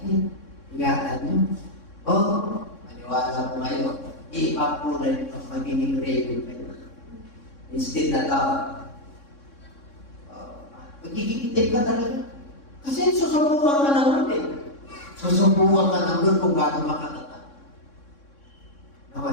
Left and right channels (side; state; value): right; late; 3.6 ms